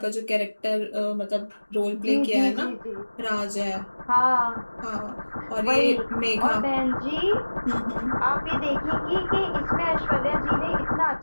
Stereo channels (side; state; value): both; inverted; correlation -1.00